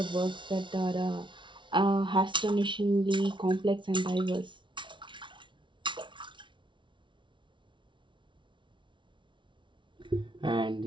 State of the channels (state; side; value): late; left; 0.24 ms